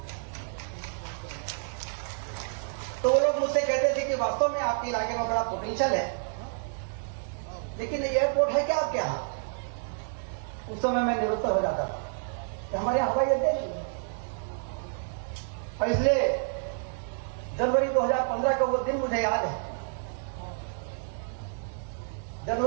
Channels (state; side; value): silent; left; digital silence